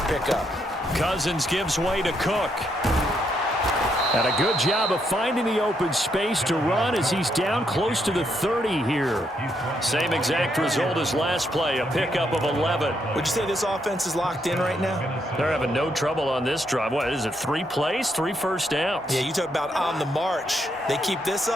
pickup. Cousins gives way to Cook. And a good job of finding the open space to run as he's down close to the 30 here. Same exact result as last play, a pickup of 11. Would you say this offense is locked in right now? They're having no trouble on this drive. What is it, 3 plays, 3 first downs? Yeah, you talk about on the march. They keep this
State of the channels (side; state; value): both; normal; correlation 0.77